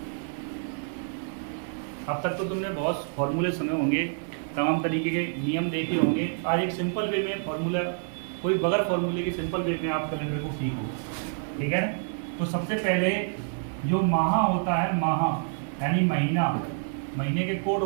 अब तक तो तुमने बहुत फॉर्मूले सुने होंगे, तमाम तरीके के नियम देखे होंगे। आज एक सिंपल वे में फॉर्मूला, कोई बगैर फॉर्मूले के सिंपल वे में आप कैलेंडर को सीखो, ठीक है। तो सबसे पहले जो माह होता है, माह यानी महीना, महीने के कोड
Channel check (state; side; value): silent; left; digital silence